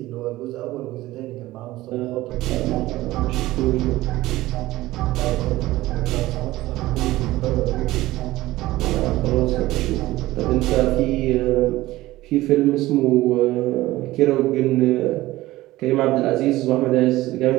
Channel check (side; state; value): left; quieter; 17.3 dB